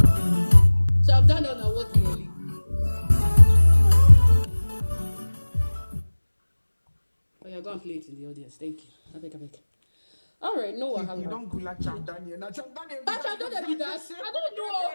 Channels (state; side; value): inverted; both; correlation -1.00